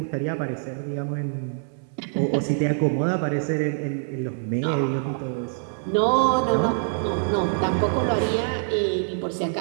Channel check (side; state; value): left; silent; digital silence